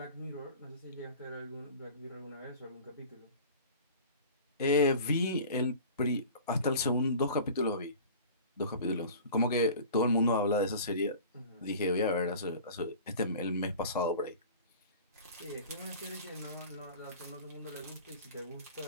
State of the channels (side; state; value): both; inverted; correlation -0.41